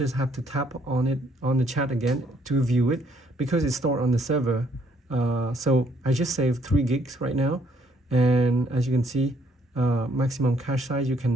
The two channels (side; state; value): both; normal; correlation 0.67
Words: have to tap on it on the chat again to view it because it's stored on the server. So I just saved 3 gigs right now, and as you can see, maximum cache size, you